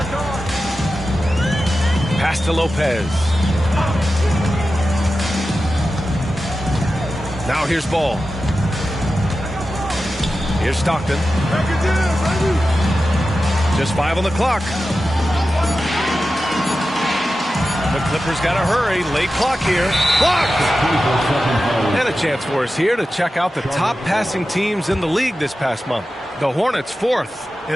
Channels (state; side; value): normal; both; correlation 0.93